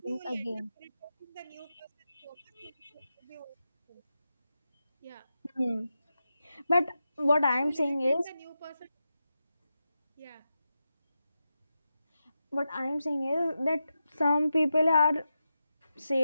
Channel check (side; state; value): both; inverted; correlation -0.90